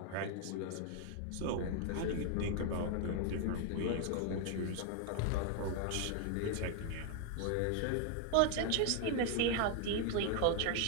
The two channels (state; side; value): different; both; correlation 0.00